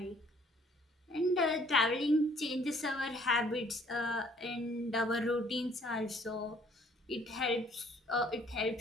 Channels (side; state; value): both; normal; correlation 0.60